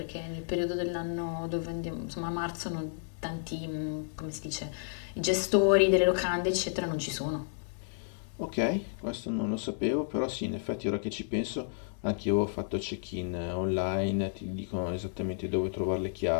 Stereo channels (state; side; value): silent; right; digital silence